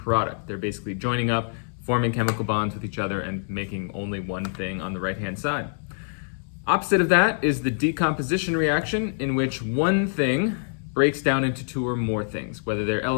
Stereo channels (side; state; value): right; silent; digital silence